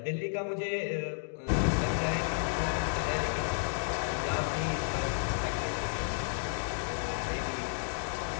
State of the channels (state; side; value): silent; right; digital silence